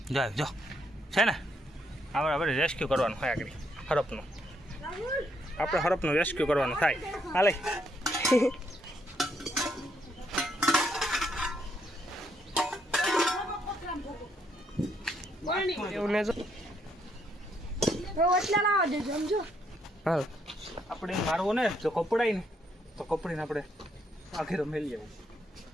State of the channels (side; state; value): both; normal; correlation 0.74